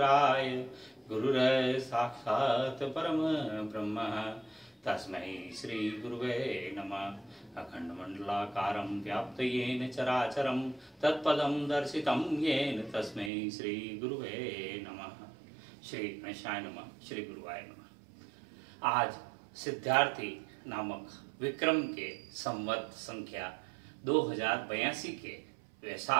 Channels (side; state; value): left; drops out; at 13.3 s